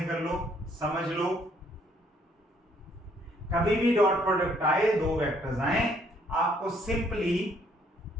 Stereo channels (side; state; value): both; normal; correlation 0.66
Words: कर लो, समझ लो। कभी भी डॉट प्रोडक्ट आए, दो वेक्टर्स आए, आपको सिंपली